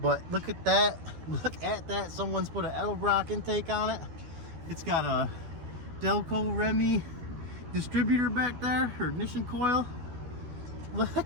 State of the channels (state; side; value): late; left; 12 ms